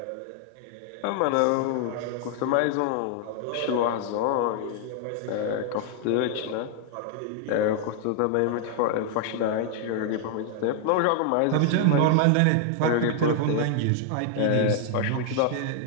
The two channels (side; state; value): both; different; correlation 0.00